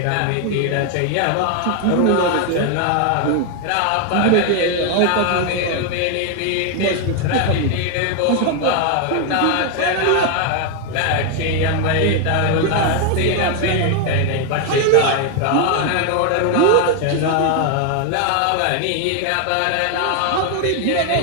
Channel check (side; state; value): both; different; correlation 0.01